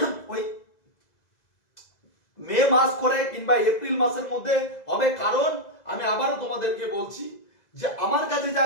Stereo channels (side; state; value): right; late; 2.0 ms